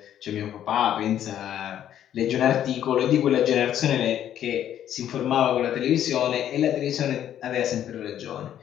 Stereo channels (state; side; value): quieter; right; 10.7 dB